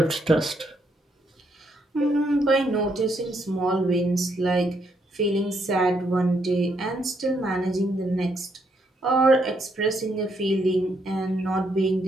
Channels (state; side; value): normal; both; correlation 0.75